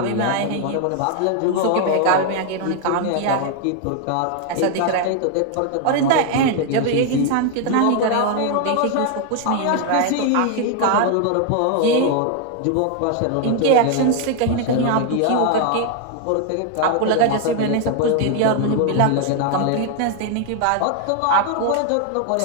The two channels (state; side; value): different; both; correlation 0.00